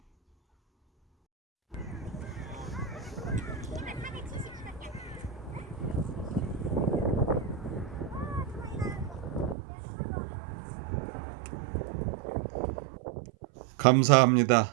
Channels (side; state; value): left; drops out; at 9.6 s